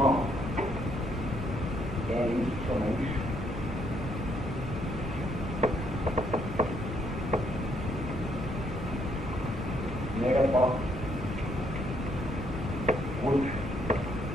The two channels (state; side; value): normal; both; correlation 0.71